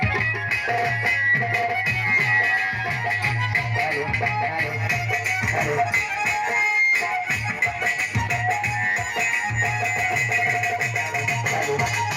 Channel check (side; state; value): both; identical; correlation 1.00